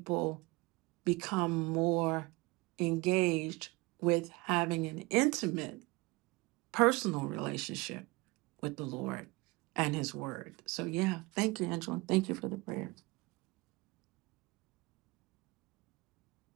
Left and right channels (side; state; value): left; quieter; 23.8 dB